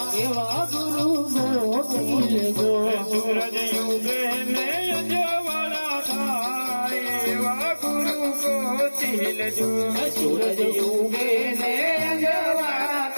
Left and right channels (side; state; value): both; inverted; correlation -1.00